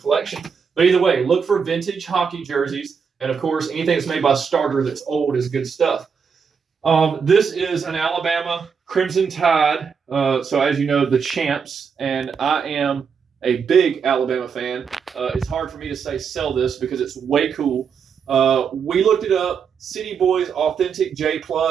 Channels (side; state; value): left; quieter; 6.3 dB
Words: But either way, look for vintage hockey jerseys. And of course, anything that's made by Starter that's old is good stuff. This is an Alabama Crimson Tide. So as you know, the champs, and I am a big Alabama fan. It's hard for me to say sell this because it's way cool. We looked it up. City Boys Authentic J+.